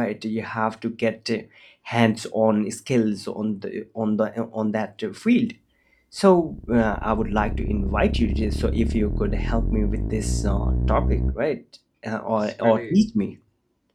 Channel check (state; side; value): identical; both; correlation 1.00